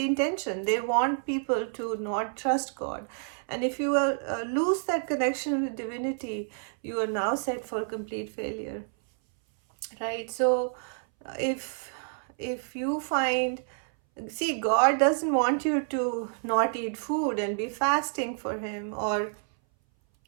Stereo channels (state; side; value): silent; left; 59 dB below the other